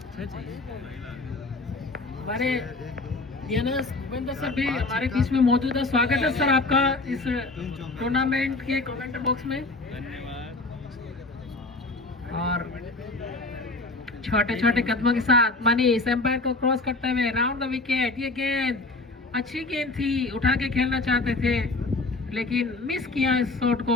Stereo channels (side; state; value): right; quieter; 3.3 dB